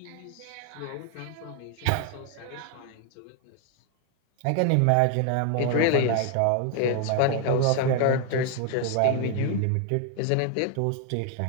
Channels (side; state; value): both; different; correlation 0.01